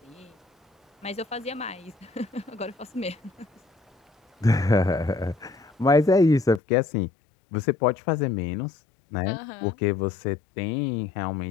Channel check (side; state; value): right; drops out; at 6.6 s